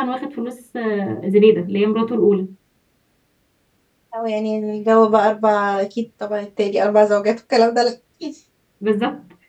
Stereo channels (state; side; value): identical; both; correlation 1.00